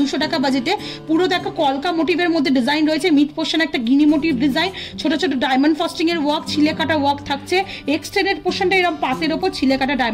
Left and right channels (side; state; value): both; identical; correlation 1.00